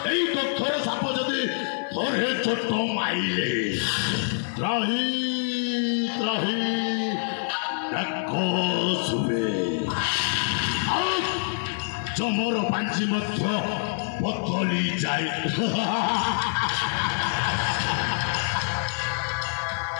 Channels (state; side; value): silent; right; 61 dB below the other